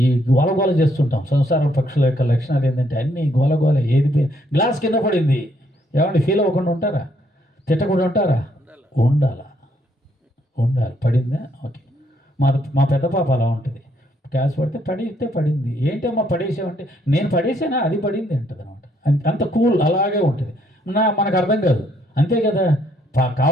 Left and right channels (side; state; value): both; normal; correlation 0.70